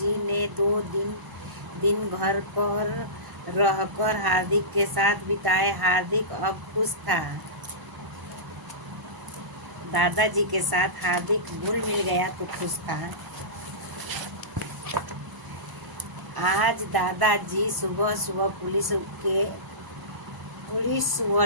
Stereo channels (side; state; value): left; late; 1.0 ms